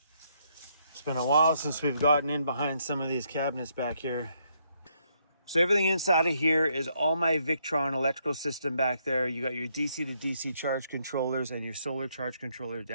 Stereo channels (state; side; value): inverted; both; correlation -0.74